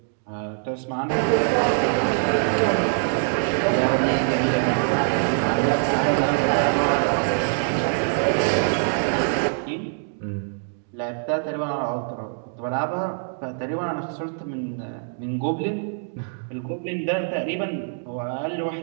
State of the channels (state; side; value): silent; left; digital silence